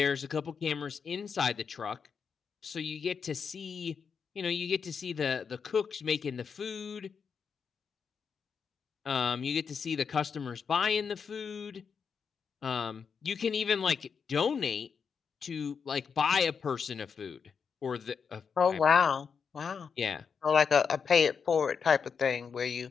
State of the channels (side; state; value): right; quieter; 6.2 dB